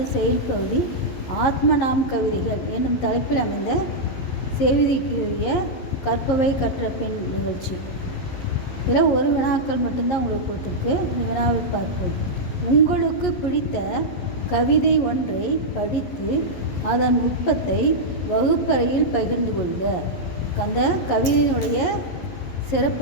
செயல் பகுதி ஆத்மநாம் கவிதைகள் என்னும் தலைப்பில் அமைந்த செய்திக்குரிய கற்பவை கற்ற பெண் நிகழ்ச்சி. இதில் ஒரு வினாக்கள் மட்டும்தான் உங்களுக்கு கொடுத்துருக்கு. இந்த வினாவை பார்ப்போம். உங்களுக்கு பிடித்த கவிதை ஒன்றை படித்து அதன் நுட்பத்தை வகுப்பறையில் பகிர்ந்து கொள்க. அந்த கவிதையினுடைய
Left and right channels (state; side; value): late; right; 11 ms